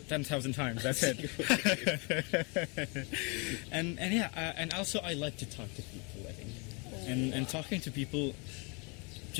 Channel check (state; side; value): quieter; right; 31.9 dB